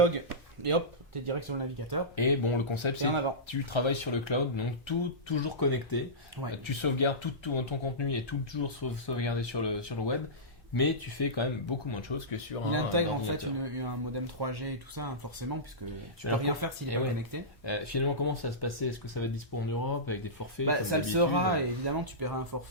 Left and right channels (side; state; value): both; normal; correlation -0.18